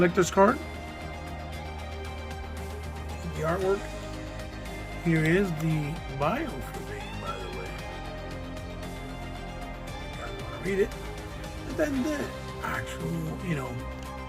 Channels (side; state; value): both; identical; correlation 1.00